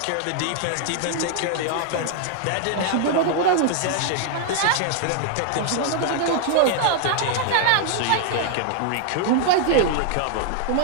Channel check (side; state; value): both; different; correlation 0.00